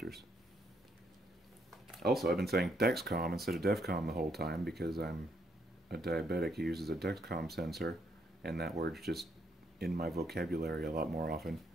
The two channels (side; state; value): both; normal; correlation 0.73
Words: Also, I've been saying Dexcom instead of DEFCON the whole time because I'm a diabetic who uses a Dexcom sensor, and that word's just in my vocabulary a lot more often.